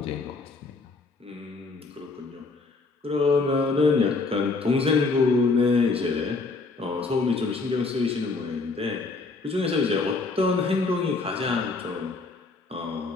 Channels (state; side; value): quieter; right; 3.9 dB